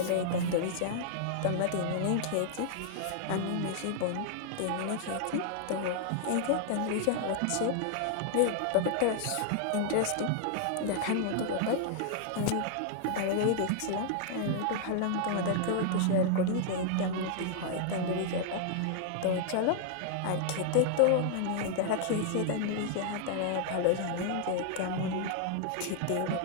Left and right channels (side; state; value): both; different; correlation -0.01